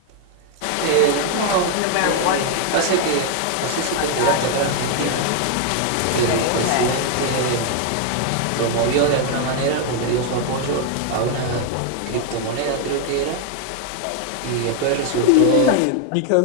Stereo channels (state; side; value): different; both; correlation 0.00